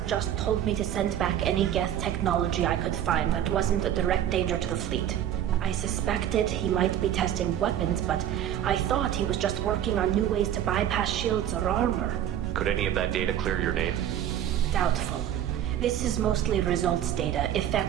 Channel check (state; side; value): quieter; left; 10.8 dB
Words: just told me to send back any Geth technology I could find that wasn't a direct danger to the fleet. I suspected he might be testing weapons, but I thought he was just working on new ways to bypass shields or armor. Could any of that data clear your name? Doubtful. This is mostly results data,